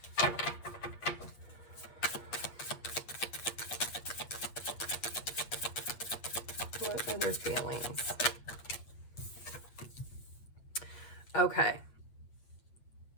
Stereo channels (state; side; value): late; right; 8.2 ms